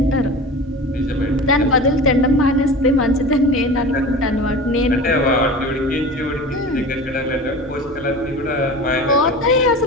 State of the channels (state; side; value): normal; both; correlation 0.34